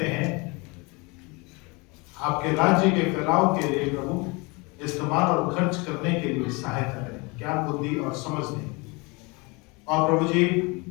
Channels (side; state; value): right; quieter; 27.6 dB